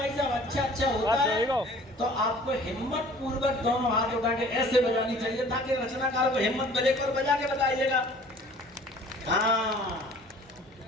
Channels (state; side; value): normal; both; correlation 0.50